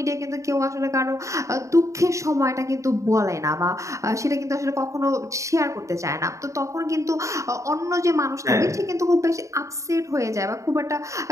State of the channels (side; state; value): left; late; 0.15 ms